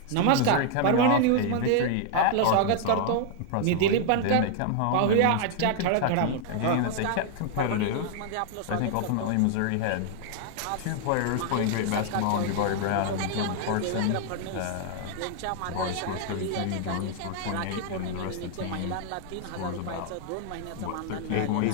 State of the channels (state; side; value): different; both; correlation 0.00